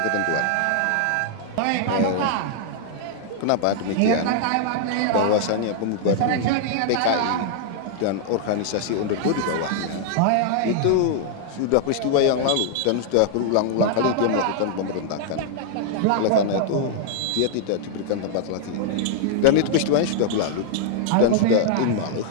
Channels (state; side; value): different; both; correlation -0.01